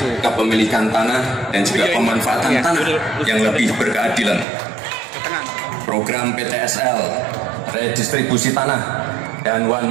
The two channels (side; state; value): left; drops out; at 4.5 s